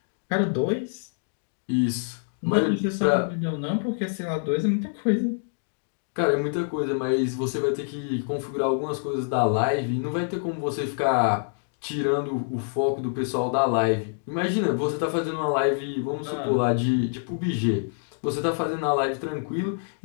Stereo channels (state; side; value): silent; right; digital silence